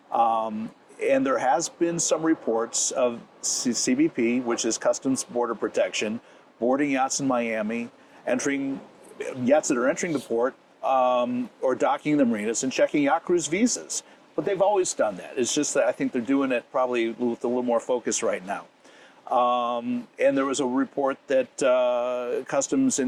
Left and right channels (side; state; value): both; identical; correlation 1.00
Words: And there has been some reports of CBP, which is Customs Border Protection, boarding yachts in Miami, yachts that are entering the port, or docking the marinas and checking yacht crews' visas. But they've always done that. It's just that I think they're doing it probably with a little more focus right now. And there was a report that Customs